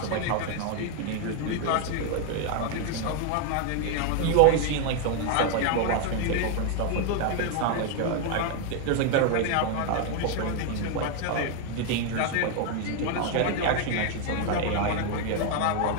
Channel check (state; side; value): different; both; correlation 0.00